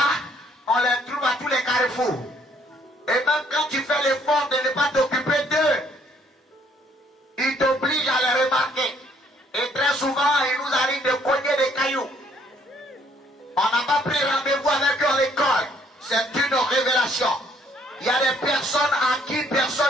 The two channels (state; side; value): normal; both; correlation 0.65